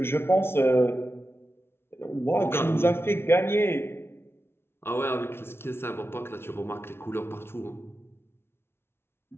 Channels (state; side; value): late; right; 0.12 ms